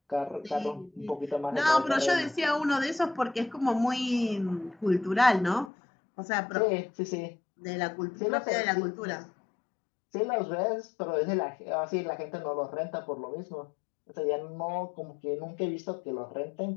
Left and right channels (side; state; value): right; drops out; at 5.7 s